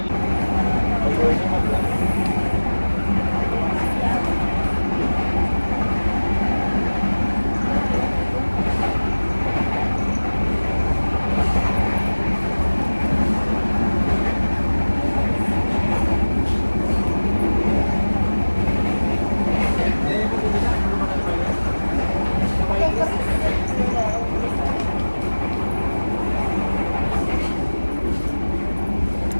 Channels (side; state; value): both; inverted; correlation -1.00